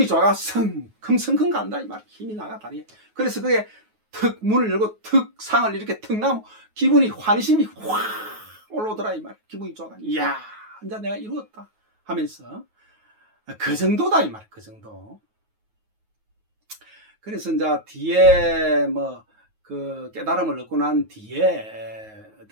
좋아가 성큼성큼 간다 이 말. 힘이 나가 다리에. 그래서 그게 턱 문을 열고 턱 상을 이렇게 턱 나면 기분이 환심이 확 올라오더라 이 말. 기분이 좋아가 이야 이제 내가 이루었다 하면서 그 정도다 이 말. 그 정도. 그래서 이제 뒤에 뭐 그 깨달음을 얻고 난 뒤에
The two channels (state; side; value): late; left; 9.4 ms